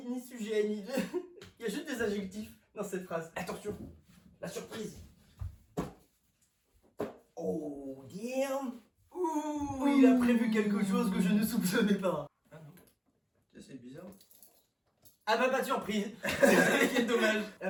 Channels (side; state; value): both; identical; correlation 1.00